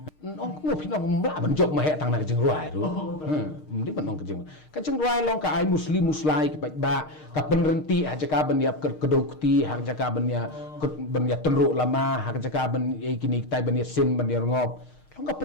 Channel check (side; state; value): right; late; 6.5 ms